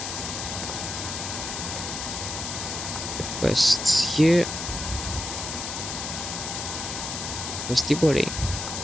request here, request the body.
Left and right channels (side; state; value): left; noise; hiss, 5 dB below the sound